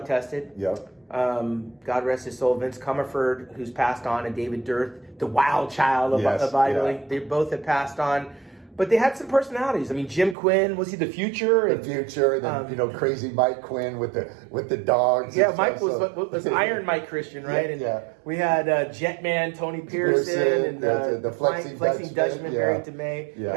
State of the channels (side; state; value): left; drops out; at 10.4 s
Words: tested. Yep. God rest his soul. Vince Comerford, who's passed on, and David Dirth, the wild child of bodybuilding. They both have passed on. But they had some personalities. I mean, Jim Quinn, was he the future? The future, and then crazy Mike Quinn with the dogs. Yeah, Mike was Iron Mike Christian, right? Yeah. We had Jetman Tony Pearson and the flexing Dutchman Barry DeMay. Yeah.